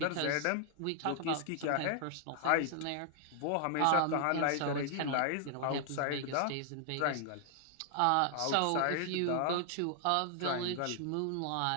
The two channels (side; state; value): both; different; correlation 0.00